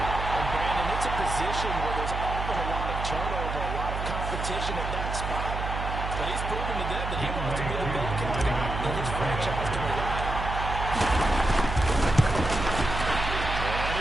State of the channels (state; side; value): noise; right; hum, 4 dB below the sound